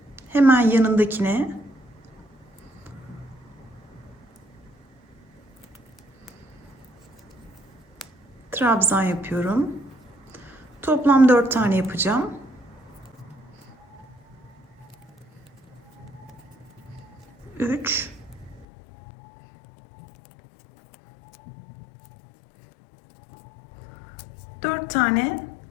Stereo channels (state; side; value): drops out; right; at 18.7 s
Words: Hemen yanındakine trabzan yapıyorum. Toplam 4 tane yapacağım. 3, 4 tane